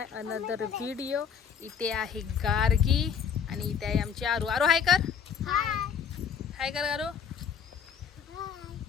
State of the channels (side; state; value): right; quieter; 7.4 dB